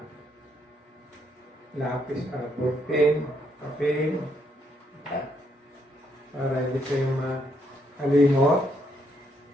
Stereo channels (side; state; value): both; normal; correlation 0.74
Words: lapis, arbutin, papel, para hindi kayo makalimot